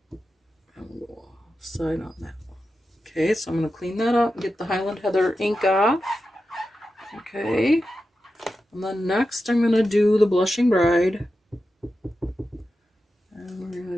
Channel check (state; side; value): normal; both; correlation 0.91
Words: side on that one. Okay, so I'm going to clean that up and get the Highland Heather ink off. Okay, and then next I'm going to do the Blushing Bride. And we're